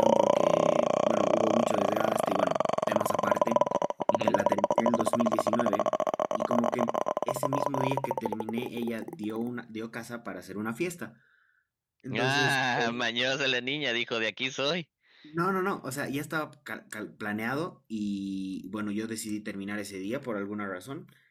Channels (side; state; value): both; identical; correlation 1.00